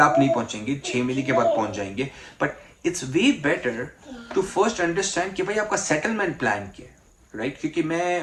आप नहीं पहुंचेंगे, 6 महीने के बाद पहुंच जाएंगे, but it's way better to first understand कि भाई आपका सेटलमेंट प्लान क्या है, राइट? क्योंकि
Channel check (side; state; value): both; identical; correlation 1.00